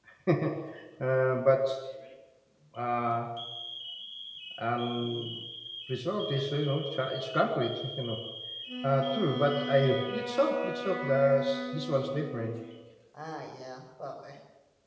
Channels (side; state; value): both; identical; correlation 1.00